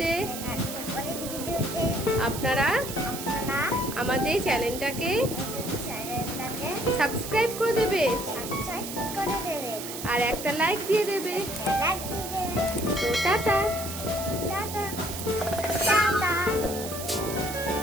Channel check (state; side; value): noise; right; hiss, 8 dB below the sound